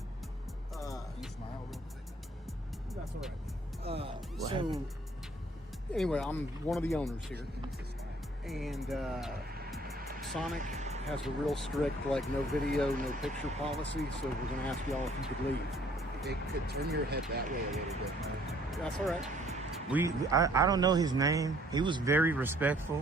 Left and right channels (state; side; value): normal; both; correlation 0.60